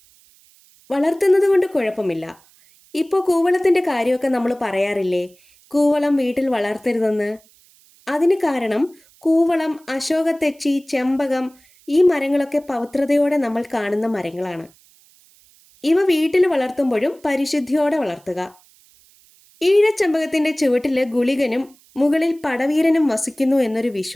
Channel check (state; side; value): noise; right; hiss, 30 dB below the sound